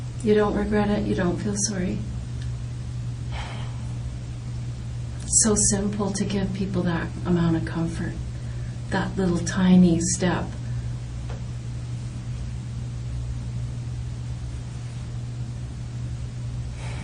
You don't regret it? You don't feel sorry? It's so simple to give people that amount of comfort, that little tiny step.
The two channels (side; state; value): both; identical; correlation 1.00